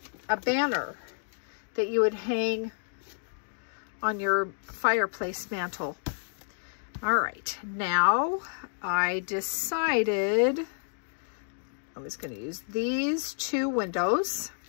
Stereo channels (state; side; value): silent; right; digital silence